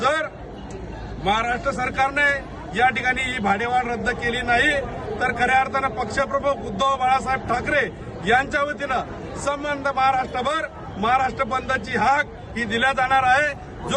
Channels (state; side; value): identical; both; correlation 1.00